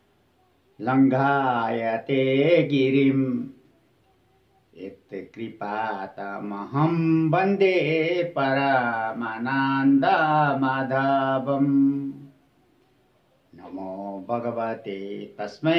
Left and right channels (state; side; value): identical; both; correlation 1.00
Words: लङ्घायते गिरिम् यत्कृपातमहं वन्दे परमानन्दमाधवम्। नमो भगवते